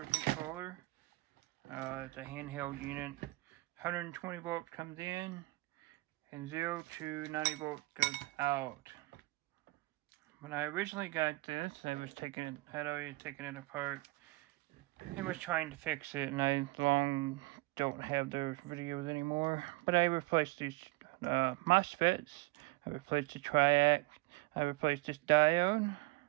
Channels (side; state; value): left; quieter; 22.3 dB